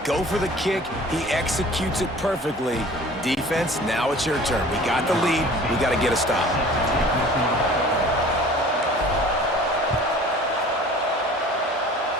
Go for the kick. He executes it perfectly. Defense, now it's your turn. We got the lead. We got to get a stop.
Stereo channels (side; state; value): both; normal; correlation 0.46